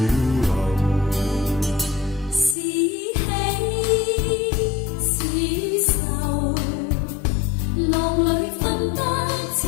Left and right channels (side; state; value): right; drops out; at 2.6 s